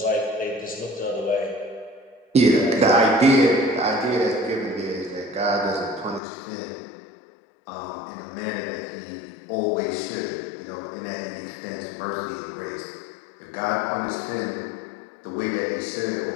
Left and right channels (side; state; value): right; drops out; at 6.2 s